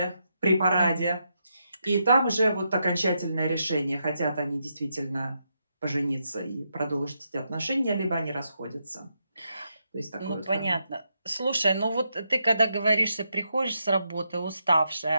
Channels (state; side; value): inverted; both; correlation -0.82